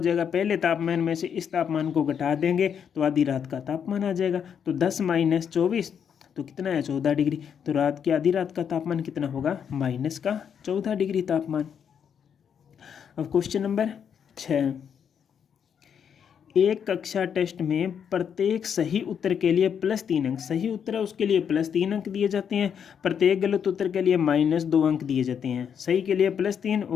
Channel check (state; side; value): quieter; right; 7.8 dB